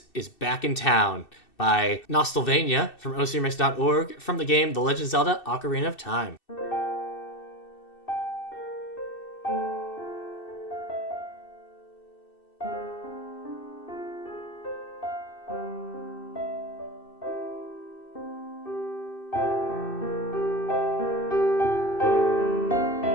is Back in Town by Nostalvania from ocremix.org from the game The Legend of Zelda Ocarina of Time.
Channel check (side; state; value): right; late; 2.6 ms